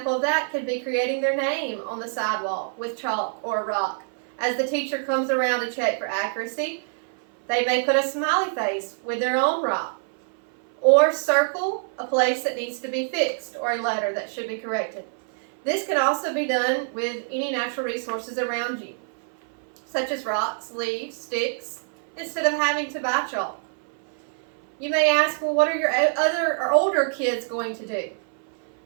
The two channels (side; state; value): left; silent; 59 dB below the other